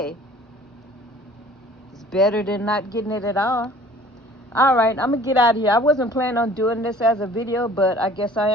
it's better than not getting it at all. All right, I'm gonna get out of here. I wasn't planning on doing this as a video, but I guess I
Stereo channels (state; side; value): normal; both; correlation 0.50